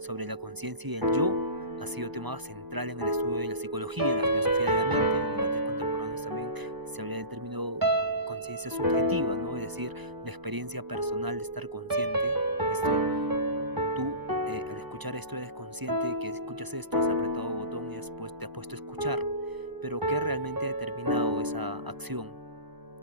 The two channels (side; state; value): left; late; 1.0 ms